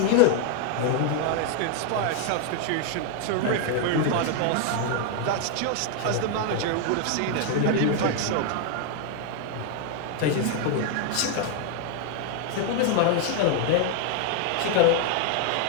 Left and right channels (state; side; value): different; both; correlation 0.00